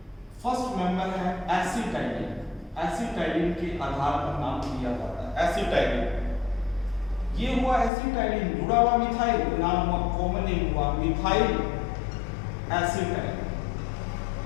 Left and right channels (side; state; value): right; drops out; at 7.9 s